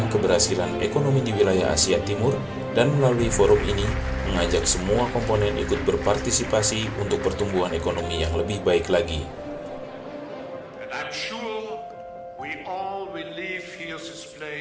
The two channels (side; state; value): both; identical; correlation 1.00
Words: keberhasilan ekonomi di wilayah Asia Timur dan melalui forum ini mengajak semua komponen ikut berpartisipasi untuk pertumbuhan ekonomi yang lebih baik lagi. And I'm sure we all will leave here this